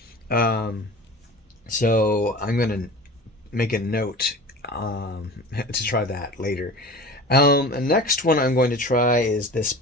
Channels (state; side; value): normal; both; correlation 0.37